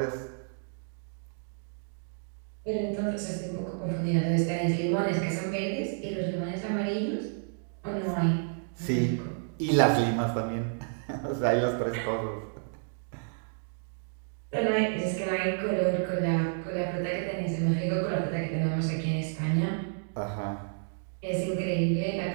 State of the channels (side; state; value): left; silent; digital silence